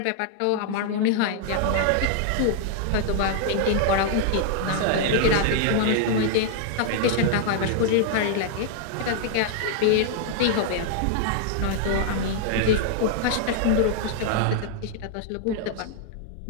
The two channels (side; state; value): both; different; correlation -0.01